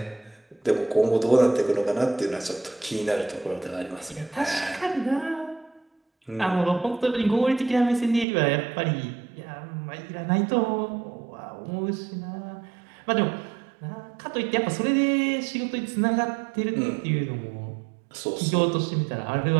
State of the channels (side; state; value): left; drops out; at 8.2 s